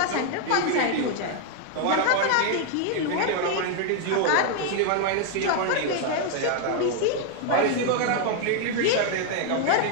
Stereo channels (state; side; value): different; both; correlation 0.00